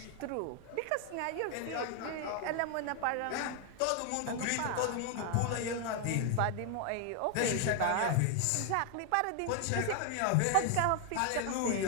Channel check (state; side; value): different; both; correlation 0.00